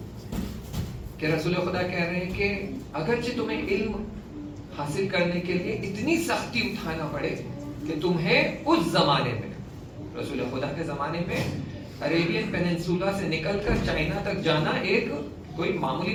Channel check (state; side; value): identical; both; correlation 1.00